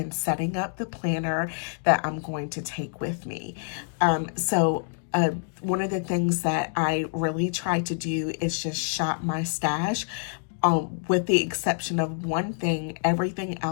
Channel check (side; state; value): right; silent; digital silence